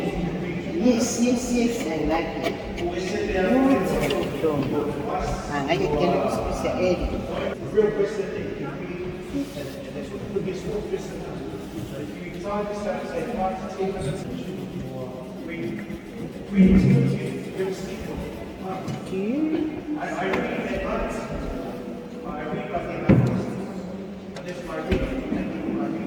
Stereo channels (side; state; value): both; identical; correlation 1.00